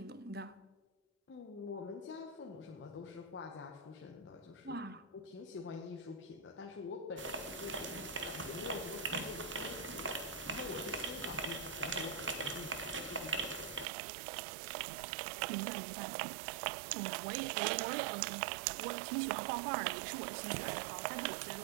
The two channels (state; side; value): drops out; left; at 13.9 s